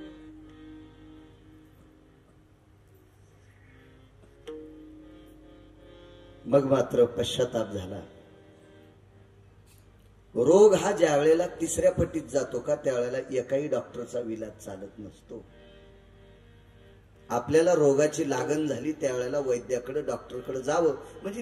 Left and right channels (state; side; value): identical; both; correlation 1.00